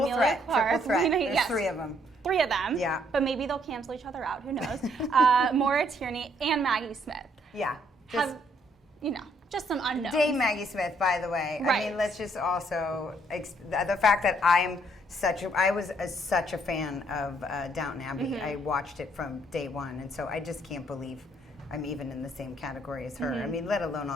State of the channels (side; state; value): both; normal; correlation 0.68